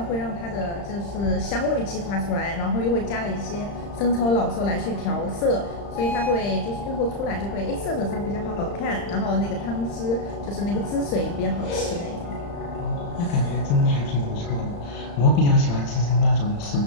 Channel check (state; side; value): late; right; 35 ms